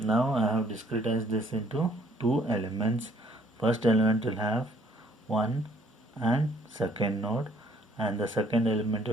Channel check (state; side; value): normal; both; correlation 0.62